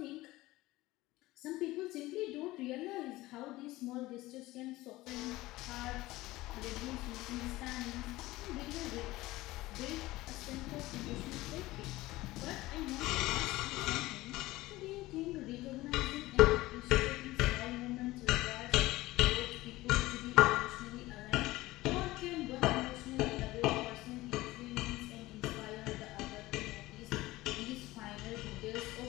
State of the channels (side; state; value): right; quieter; 18.5 dB